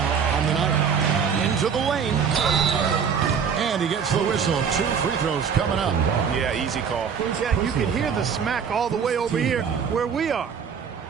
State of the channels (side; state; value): left; quieter; 6.8 dB